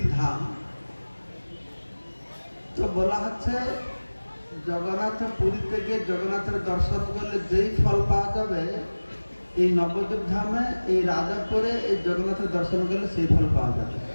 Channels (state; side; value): inverted; both; correlation -1.00